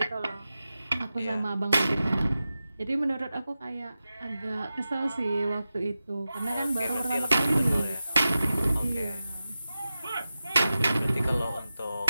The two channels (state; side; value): inverted; both; correlation -0.94